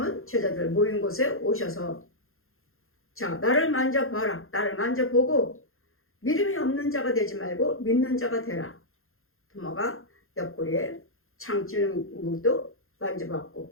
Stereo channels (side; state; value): right; late; 0.61 ms